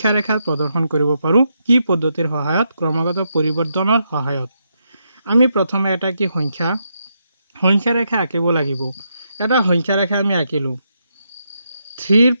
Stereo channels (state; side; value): inverted; both; correlation -0.81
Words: ৰেখাত প্ৰদৰ্শন কৰিব পাৰোঁ? কি পদ্ধতিৰ সহায়ত? ক্ৰমাগত পৰিৱৰ্তনৰ সহায়ত। আমি প্ৰথমে এটা কি সংখ্যা ৰেখা আঁকিব লাগিব। এটা সংখ্যা ৰেখা আমি আঁকিলোঁ। 3ৰ